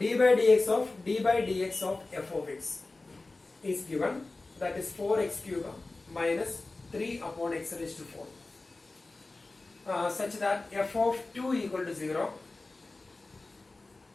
by dx of f of x is given, that is 4x cube minus 3 upon x raised to 4, such that f of 2 equal to 0.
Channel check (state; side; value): quieter; right; 3.3 dB